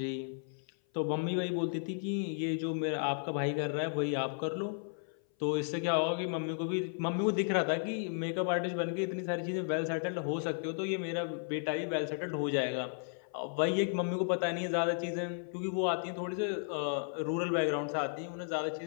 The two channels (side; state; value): right; silent; 55 dB below the other